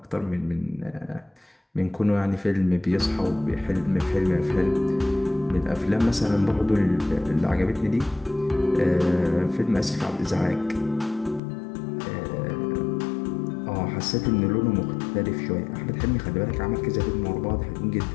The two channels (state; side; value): drops out; right; at 11.4 s